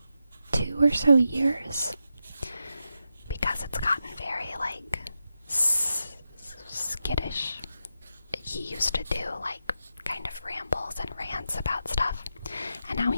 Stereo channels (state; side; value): inverted; both; correlation -0.87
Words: 2 or so years, because it's gotten very like skittish. He used to do like kind of rambles and rants about stuff, and now